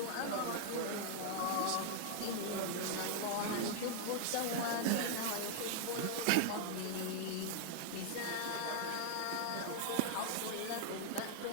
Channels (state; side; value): different; both; correlation 0.00